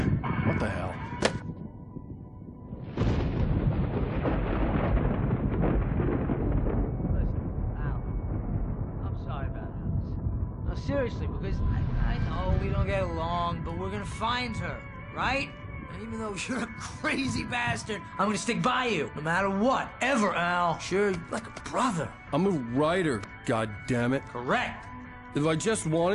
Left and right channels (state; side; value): identical; both; correlation 1.00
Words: the hell? I'm sorry about this. No, seriously, because I know we don't get along, but we're gonna find her, right? And even though you're a crazy bastard, I'm gonna stick by you, no matter what, ever, Al. Sure, like a brother. I'm a writer, goddammit. Correct. If I just